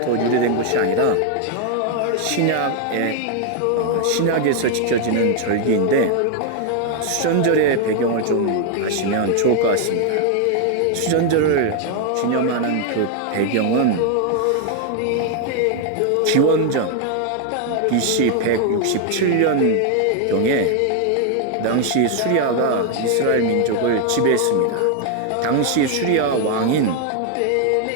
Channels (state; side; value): different; both; correlation 0.00